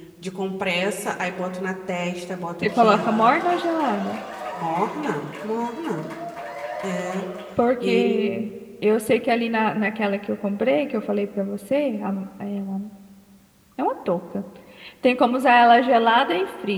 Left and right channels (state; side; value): identical; both; correlation 1.00